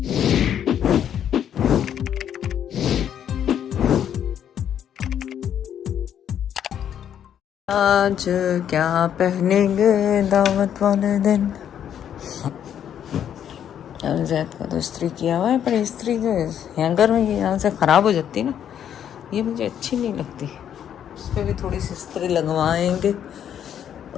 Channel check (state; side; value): quieter; right; 9.5 dB